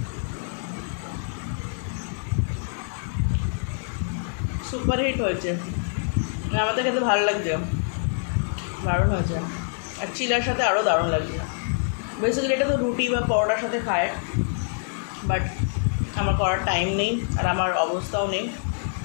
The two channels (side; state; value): right; silent; digital silence